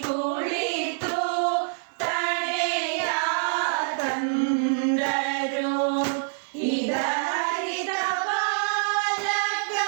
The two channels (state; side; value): silent; left; digital silence